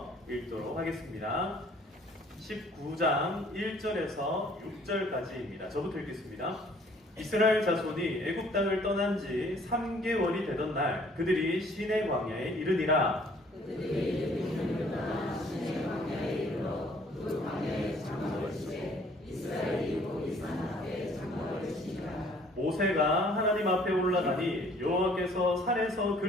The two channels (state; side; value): normal; both; correlation 0.58